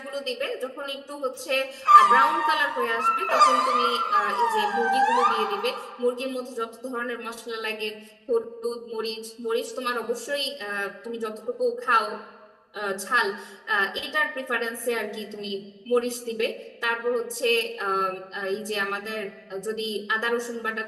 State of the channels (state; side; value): identical; both; correlation 1.00